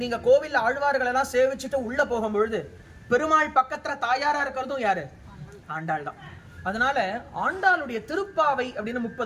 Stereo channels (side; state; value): both; identical; correlation 1.00